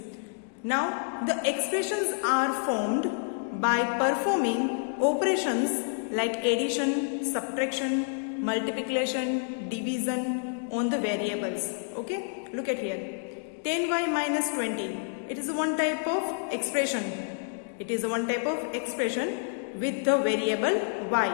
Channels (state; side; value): silent; right; digital silence